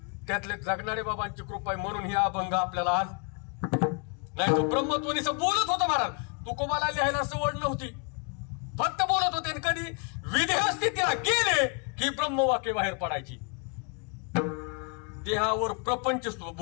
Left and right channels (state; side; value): quieter; right; 38.0 dB